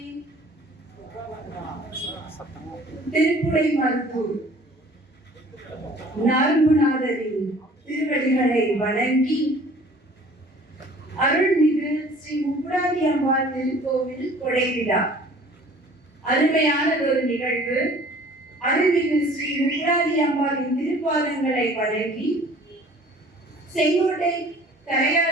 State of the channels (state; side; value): normal; both; correlation 0.50